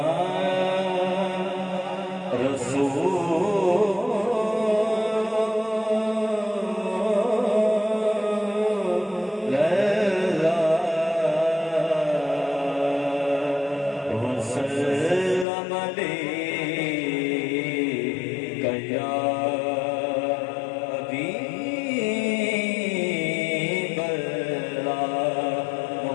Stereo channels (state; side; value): drops out; right; at 15.5 s